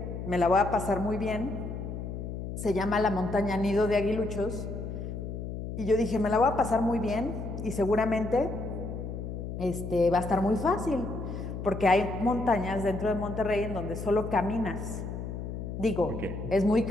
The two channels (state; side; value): noise; left; hum, 6 dB below the sound